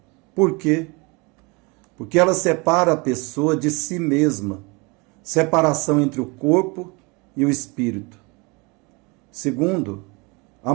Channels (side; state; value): left; quieter; 28.0 dB